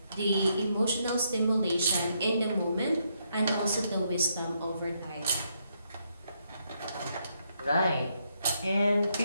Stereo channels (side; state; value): both; inverted; correlation -0.77